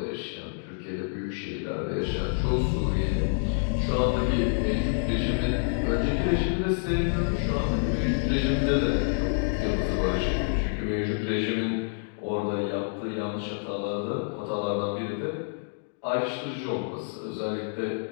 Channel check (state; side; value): silent; right; digital silence